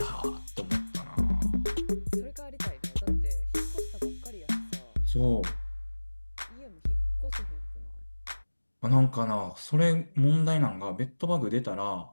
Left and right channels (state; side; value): inverted; both; correlation -1.00